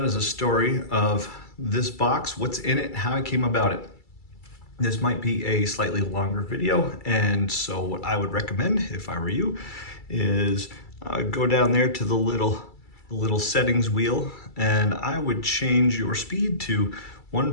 is a story of this box, what's in it, how I came about it. This might be a slightly longer video, and so what I would recommend if I were you is go down there to the little settings wheel, and I would change your speed to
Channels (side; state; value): right; late; 2.3 ms